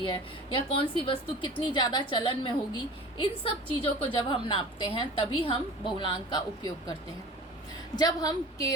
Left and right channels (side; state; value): both; normal; correlation 0.40